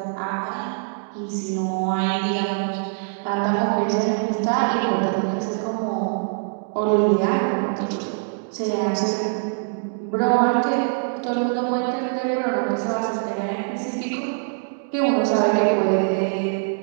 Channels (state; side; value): silent; left; digital silence